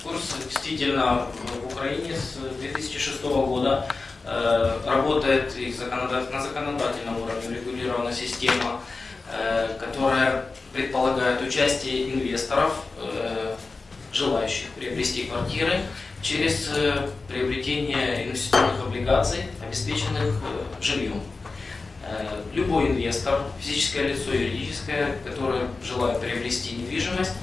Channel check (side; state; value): right; quieter; 3.9 dB